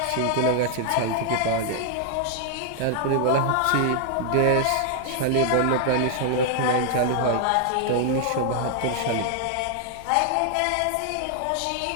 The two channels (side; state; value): both; different; correlation 0.00